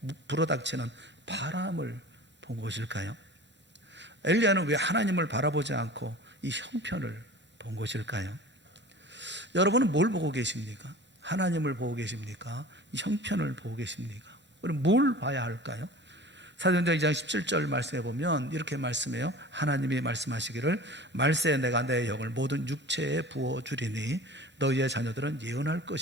불어닥치는 바람을 본 것일까요? 엘리야는 왜 하나님을 바라보지 않고 이 형편을 본 것일까요? 여러분은 뭘 보고 계십니까? 하나님을 보고 계십니까? 이 형편을 보고 계십니까? 우리 뭘 봐야 할까요? 사도행전 2장 17절 말씀해 보면 이렇게 말씀해요. 하나님이 말씀하시기를 말세에 내가 내 영을 모든 육체에 부어주리니 너희의 자녀들은 예언할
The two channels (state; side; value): normal; both; correlation 0.39